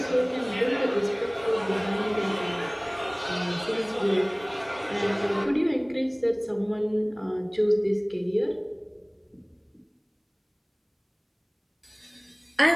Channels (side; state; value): both; identical; correlation 1.00